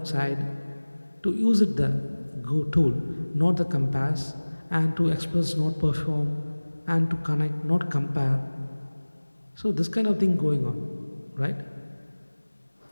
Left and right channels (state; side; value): inverted; both; correlation -1.00